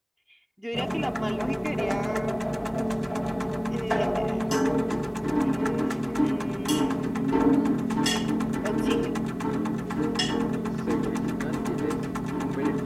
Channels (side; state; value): both; identical; correlation 1.00